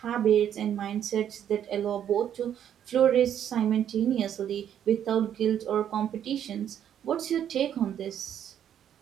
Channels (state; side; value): quieter; left; 9.7 dB